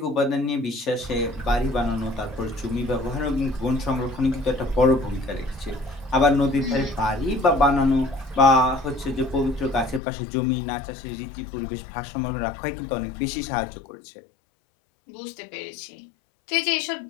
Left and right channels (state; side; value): drops out; right; at 10.0 s